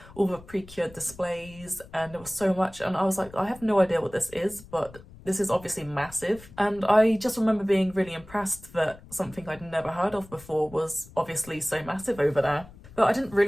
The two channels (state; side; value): noise; left; rumble, 20 dB below the sound